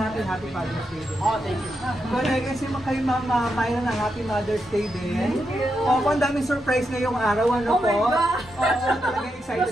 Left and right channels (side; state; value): both; normal; correlation 0.85